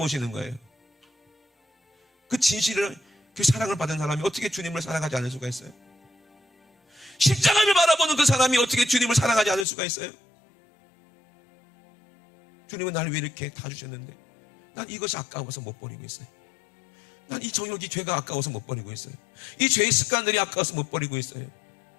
거예요. 그 진실을, 그 사랑을 받은 사람이 어떻게 주님을 사랑하지 않을 수가 있어요? 십자가를 바라보는 그 사람이 어떻게 주님을 사랑하지 않을 수가 있어요? 주님은 나를 왜 이렇게 다 주셨는데 난 이것이 아까워서 못 버리고 있어요. 난 이 정욕이 죄가 아까워서 못 버리고 있어요. 이 죄의 습관들이 아까워서 못 버리고 있어요.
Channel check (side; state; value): right; drops out; at 9.7 s